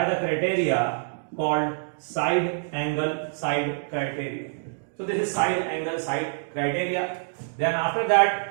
the criteria called side angle side criteria. So this is side angle side criteria. Then after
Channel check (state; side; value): silent; left; digital silence